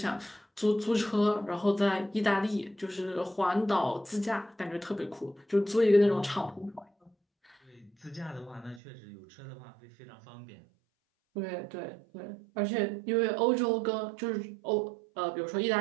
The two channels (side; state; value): left; drops out; at 8.8 s